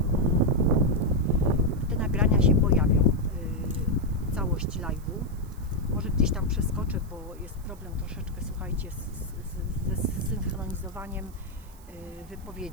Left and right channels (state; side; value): noise; right; hiss, 26 dB below the sound